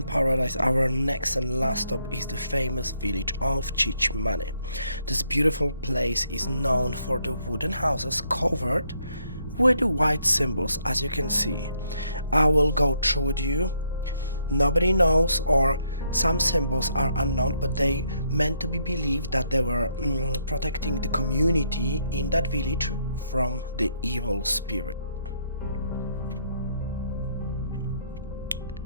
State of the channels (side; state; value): both; inverted; correlation -0.73